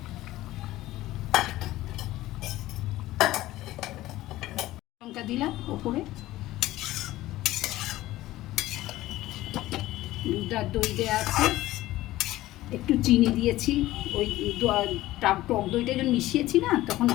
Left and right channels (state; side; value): quieter; right; 16.4 dB